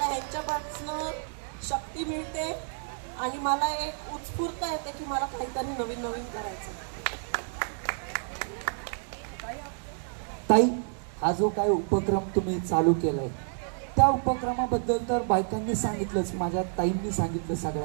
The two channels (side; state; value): left; silent; 58 dB below the other